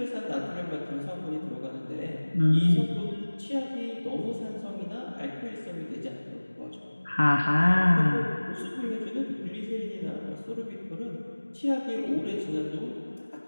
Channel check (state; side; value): inverted; both; correlation -1.00